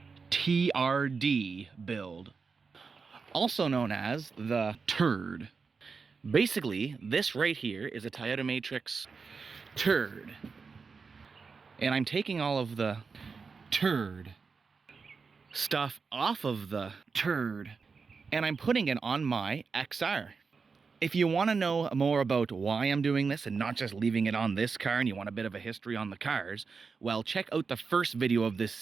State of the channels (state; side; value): quieter; left; 5.0 dB